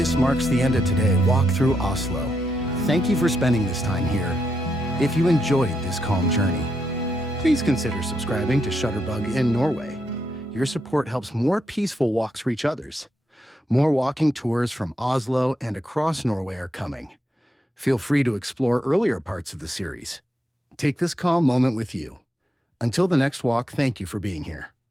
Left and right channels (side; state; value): both; normal; correlation 0.81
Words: marks the end of today's walk through Oslo. Thank you for spending this time here. If you enjoyed this calm journey, please consider subscribing to ShutterbuginNorway. Your support helps more peaceful walks reach others. More walking tours from Oslo and across Norway are coming. Feel free to explore earlier parts of the series. Take this calm moment with you. Until the next walk, thank you for being here.